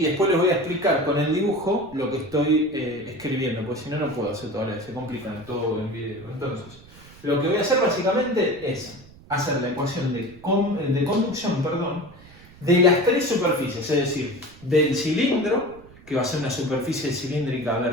después les voy a explicar con el dibujo lo que estoy escribiendo, porque si no, no puedo hacer todo a la vez, se complican todo en video. Entonces, lo que voy a hacer básicamente es hacer la ecuación de conducción, de las tres superficies, es decir, del cilindro, que va a ser una superficie cilíndrica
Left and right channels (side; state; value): right; noise; rumble, 22 dB below the sound